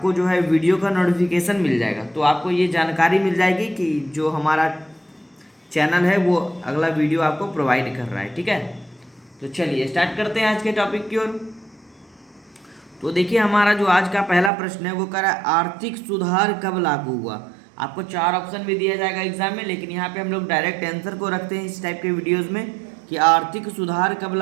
जो है वीडियो का नोटिफिकेशन मिल जाएगा। तो आपको ये जानकारी मिल जाएगी कि जो हमारा चैनल है वो अगला वीडियो आपको प्रोवाइड कर रहा है। ठीक है, तो चलिए स्टार्ट करते हैं आज के टॉपिक की ओर। तो देखिए, हमारा जो आज का पहला प्रश्न है वो कह रहा है आर्थिक सुधार कब लागू हुआ। आपको 4 ऑप्शन भी दिया जाएगा एग्जाम में, लेकिन यहाँ पे हम लोग डायरेक्ट आंसर को रखते हैं इस टाइप के वीडियोस में कि आर्थिक सुधार कब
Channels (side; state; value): left; drops out; at 14.5 s